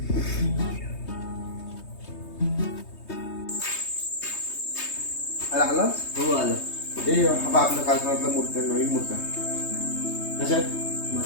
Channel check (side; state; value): right; late; 3.2 ms